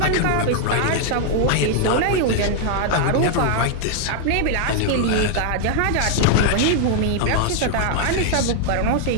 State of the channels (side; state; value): both; different; correlation 0.00